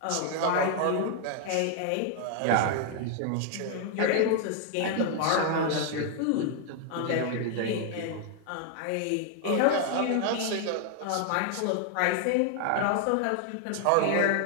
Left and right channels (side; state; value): both; different; correlation 0.00